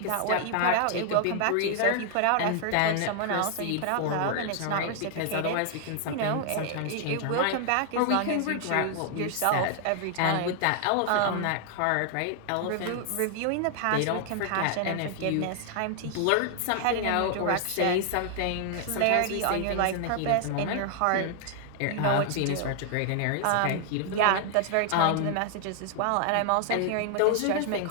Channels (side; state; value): both; different; correlation 0.00